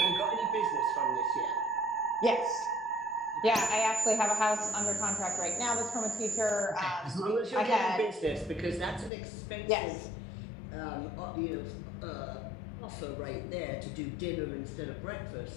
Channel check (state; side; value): drops out; right; at 9.1 s